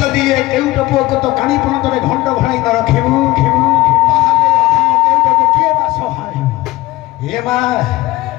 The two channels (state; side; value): quieter; right; 18.0 dB